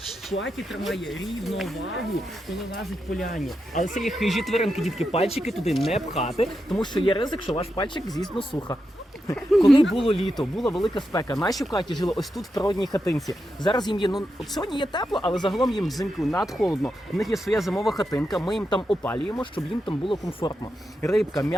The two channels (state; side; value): normal; both; correlation 0.86